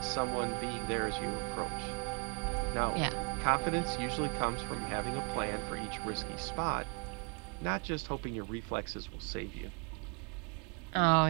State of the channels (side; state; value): left; quieter; 33.4 dB